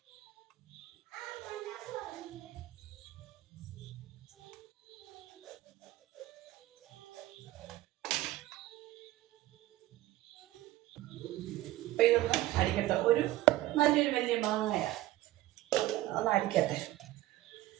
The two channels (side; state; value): left; quieter; 16.0 dB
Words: അപ്പം ഇതൊന്ന് അടിക്കട്ടെ. നല്ലൊരു വലിയ മാങ്ങയാണ്, ഒന്ന് അടിക്കട്ടെ.